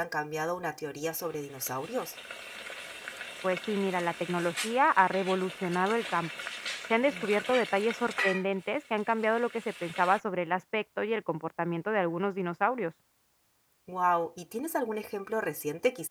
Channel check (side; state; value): both; identical; correlation 1.00